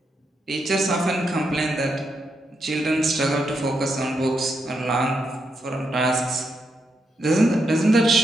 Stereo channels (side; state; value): both; normal; correlation 0.82